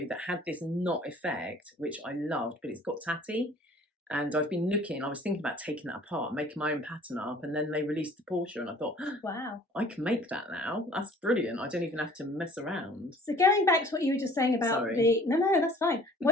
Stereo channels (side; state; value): both; normal; correlation 0.51